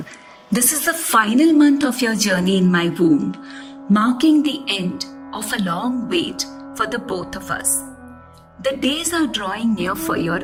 this is the final month of your journey in my womb, marking the end of a long wait for the both of us. The days are drawing near for your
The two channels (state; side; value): identical; both; correlation 1.00